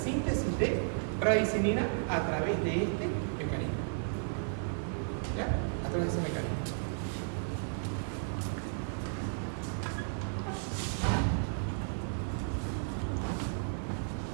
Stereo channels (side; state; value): left; silent; 55 dB below the other